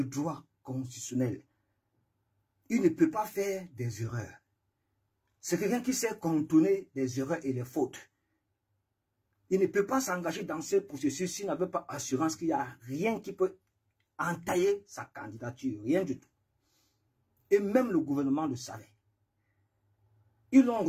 droit constitutionnel. Il ne peut pas faire des erreurs. C'est quelqu'un qui sait contourner les erreurs et les fautes. Il ne peut pas s'engager dans ce processus s'il n'avait pas assurance qu'il n'y a rien qui peut entailler sa candidature. Rien du tout. Et même le gouvernement le savait. Ils ont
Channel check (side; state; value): both; identical; correlation 1.00